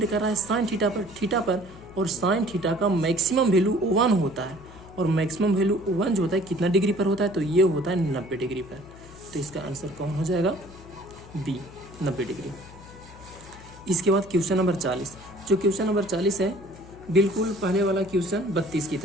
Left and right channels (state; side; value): noise; left; hum, 19 dB below the sound